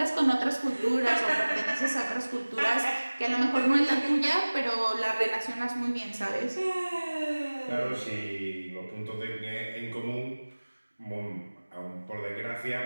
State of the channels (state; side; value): inverted; both; correlation -1.00